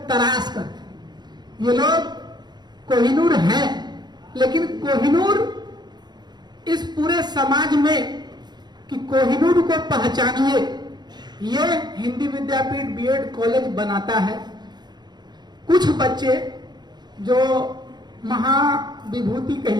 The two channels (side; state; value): left; late; 0.21 ms